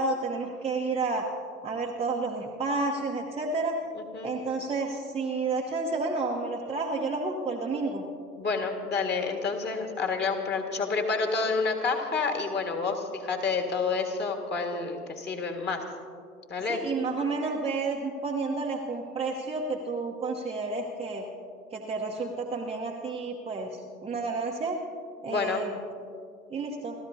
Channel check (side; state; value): both; normal; correlation 0.35